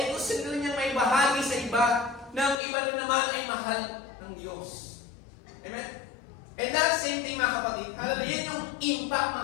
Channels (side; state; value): right; drops out; at 2.6 s